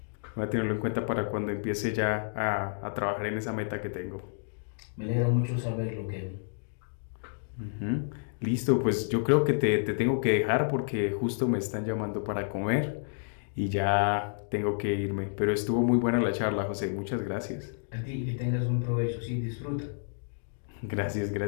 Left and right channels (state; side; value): silent; right; digital silence